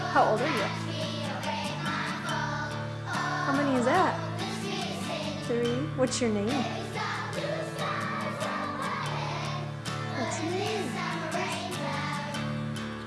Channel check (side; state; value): both; identical; correlation 1.00